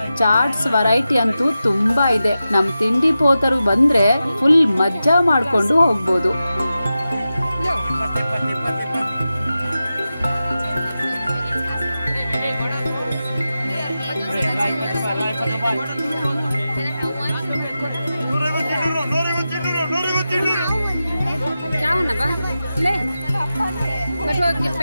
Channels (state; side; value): inverted; both; correlation -0.92